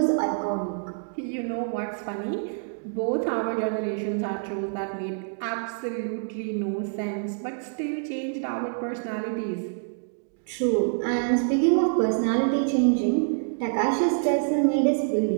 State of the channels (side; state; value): left; silent; digital silence